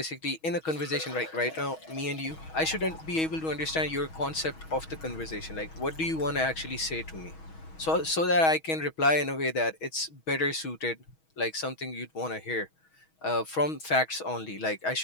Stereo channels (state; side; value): late; right; 6.3 ms